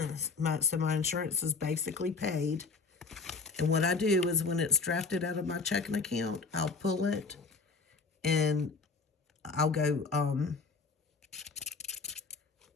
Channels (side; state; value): right; quieter; 4.4 dB